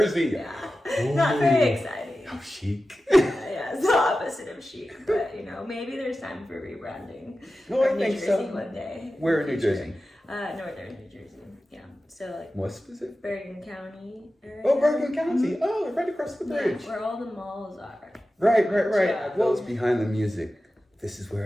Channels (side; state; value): both; normal; correlation 0.94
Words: Yeah, Ooh. not very exciting. How chic. Yeah, it's the opposite of chic, but maybe there's time for rebranding. No, I of New think Jersey so. one day. Where in New Jersey? Northern New Jersey. Yeah, so like More specific? Bergen County area. Oh, Bergen County. Oh, right across the bridge. Yeah, where all the malls are. Right. Yeah. Well, it's behind the music. This is